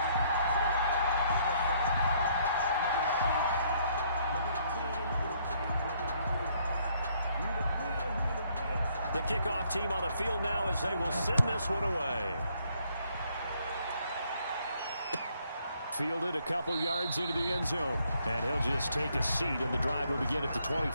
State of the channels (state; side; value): inverted; both; correlation -0.68